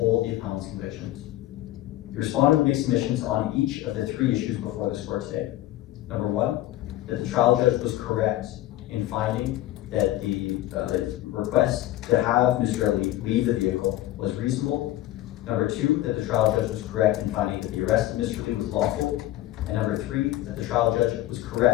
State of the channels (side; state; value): right; quieter; 15.1 dB